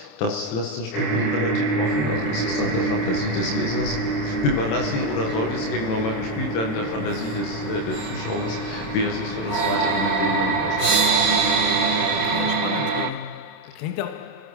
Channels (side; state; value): right; late; 27 ms